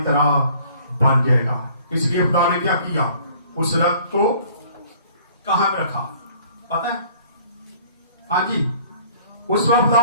तरह बन जाएगा। इसलिए खुदा ने क्या किया, उस रक्त को कहां पे रखा पता है? हाँ जी, उस वक्त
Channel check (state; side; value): inverted; both; correlation -0.55